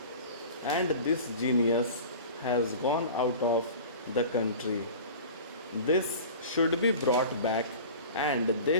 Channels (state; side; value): inverted; both; correlation -0.39